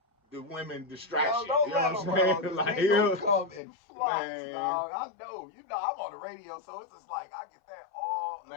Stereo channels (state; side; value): drops out; right; at 3.6 s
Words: the women distract you. You know what I'm saying? Like they gonna come in flocks, dog. I know. You know, I'm on the radio, so it's just like I get that all